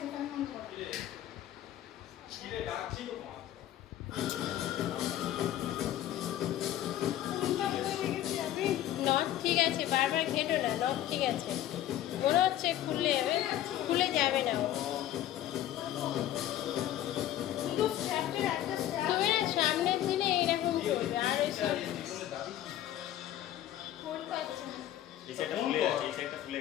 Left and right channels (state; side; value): quieter; right; 12.6 dB